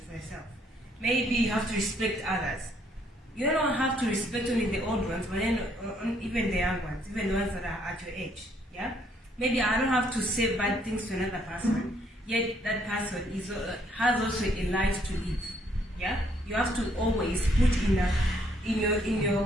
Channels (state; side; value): normal; both; correlation 0.68